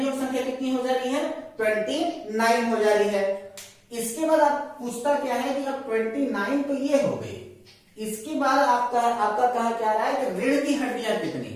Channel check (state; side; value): identical; both; correlation 1.00